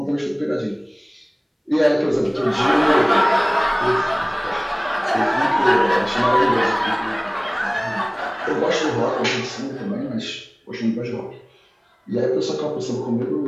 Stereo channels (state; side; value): identical; both; correlation 1.00